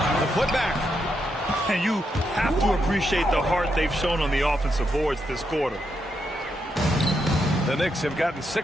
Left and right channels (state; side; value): normal; both; correlation 0.82